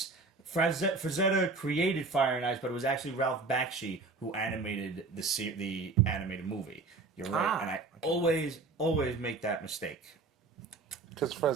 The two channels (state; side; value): quieter; left; 3.8 dB